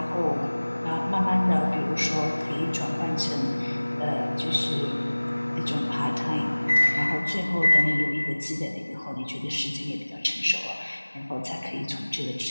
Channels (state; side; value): inverted; both; correlation -1.00